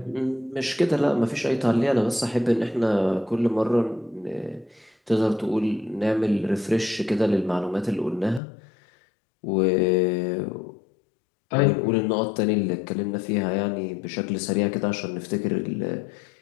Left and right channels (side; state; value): right; drops out; at 8.4 s